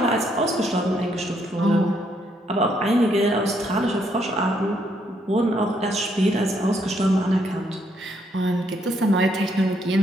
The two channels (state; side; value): normal; both; correlation 0.73